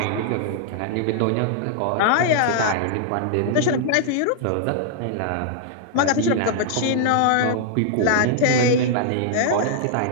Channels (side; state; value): both; different; correlation -0.01